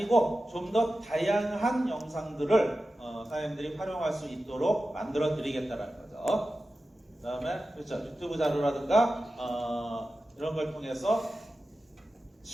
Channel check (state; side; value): normal; both; correlation 0.93